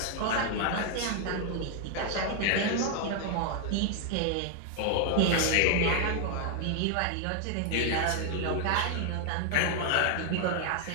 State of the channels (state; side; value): different; both; correlation 0.00